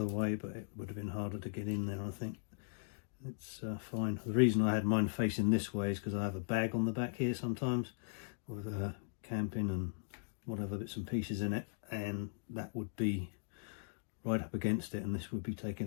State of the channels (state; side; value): silent; right; digital silence